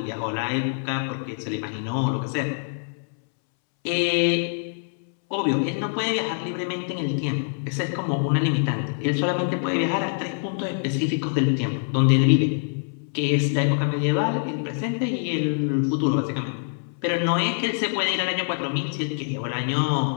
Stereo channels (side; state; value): right; silent; 62 dB below the other